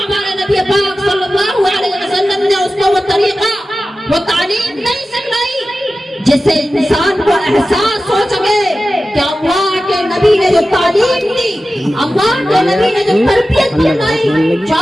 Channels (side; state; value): both; normal; correlation 0.94